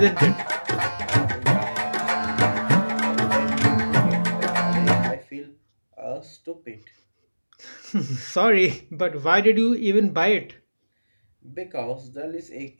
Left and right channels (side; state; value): both; inverted; correlation -1.00